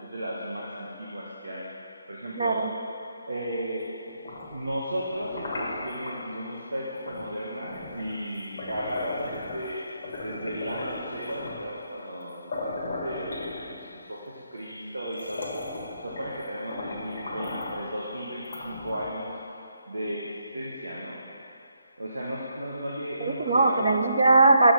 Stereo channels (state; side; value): inverted; both; correlation -0.78